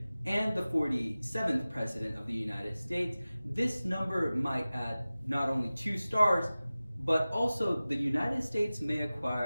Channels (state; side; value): inverted; both; correlation -0.97